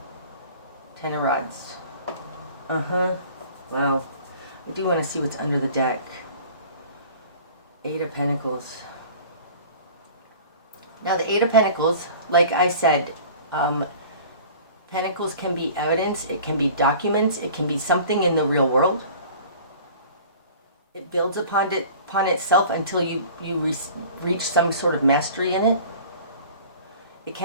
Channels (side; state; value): both; inverted; correlation -0.45